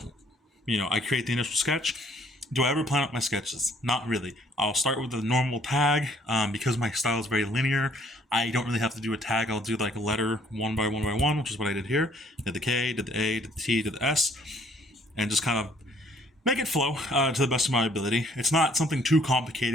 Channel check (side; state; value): both; normal; correlation 0.62